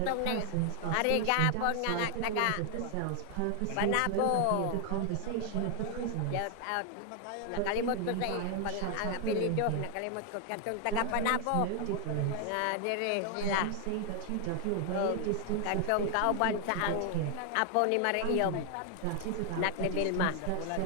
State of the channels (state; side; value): different; both; correlation 0.00